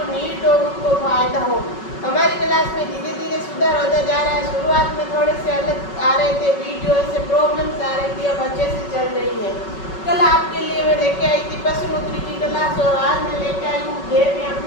नीड हो उनको फायदा हो। हमारी क्लास में धीरे धीरे सुधार होता जा रहा है। शुरुआत में थोड़े से अलग आ रहे थे वीडियो, से प्रॉब्लम्स आ रही थी, अब अच्छे से चल रही है। कल आपके लिए मैं लेके आई थी पशुपुत्री की क्लास, और आज मैं लेके आई हूँ देवी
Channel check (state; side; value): late; right; 5.3 ms